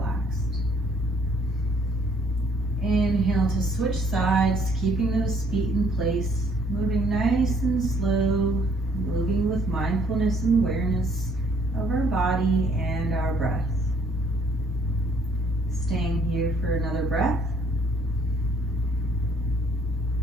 Inhale to switch sides, keeping those feet in place, moving nice and slow, moving with mindfulness and awareness of our body and our breath. Staying here for another breath.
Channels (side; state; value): both; normal; correlation 0.63